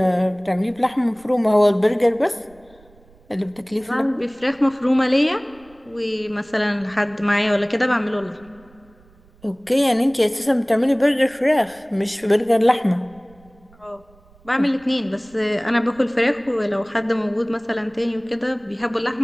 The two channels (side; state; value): right; noise; rumble, 28 dB below the sound